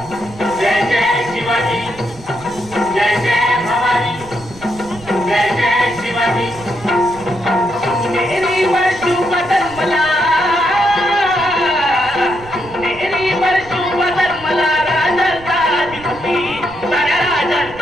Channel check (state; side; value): noise; right; rumble, 19 dB below the sound